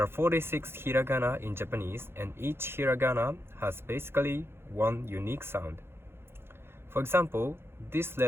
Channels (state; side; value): late; left; 0.11 ms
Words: are 46 hiragana in Japanese, and each hiragana has basically one unique sound. For example, this